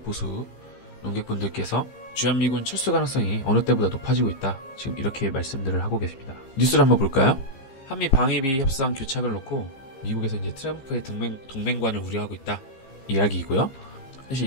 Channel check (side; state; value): right; late; 15 ms